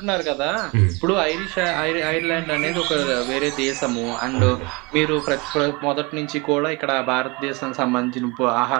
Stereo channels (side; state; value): left; quieter; 26.6 dB